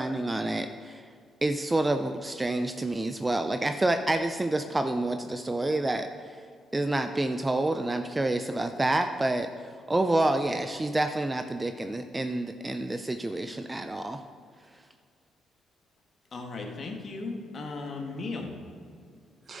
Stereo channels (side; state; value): both; normal; correlation 0.93